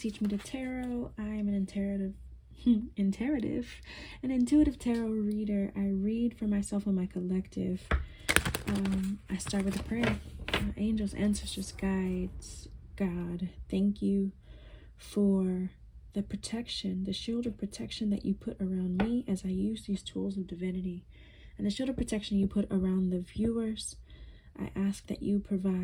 Me the Tarot. I am an intuitive tarot reader. I read for myself and my collective. I start with a prayer. Angels, ancestors, guides, God, thank you for the protection, the shield of protection that you put around me as I use these tools of divinity, and the shield of protection you put around the viewers. I ask that you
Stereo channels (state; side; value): identical; both; correlation 1.00